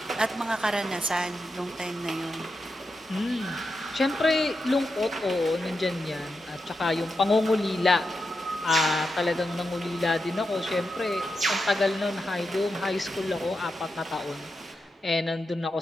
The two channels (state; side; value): normal; both; correlation 0.87